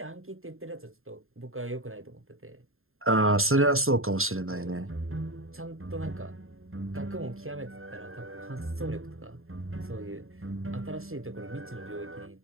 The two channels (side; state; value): left; late; 0.61 ms